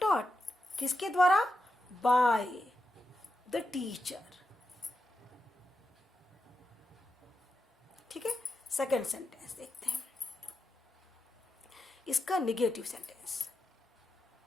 taught किसके द्वारा, बाय द टीचर. ठीक है. सेकेंड सेंटेंस देखते हैं, इसका negative sentence,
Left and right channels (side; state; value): both; normal; correlation 0.88